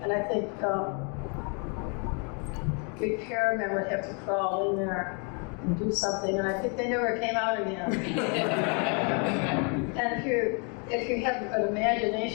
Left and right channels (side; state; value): right; quieter; 36.8 dB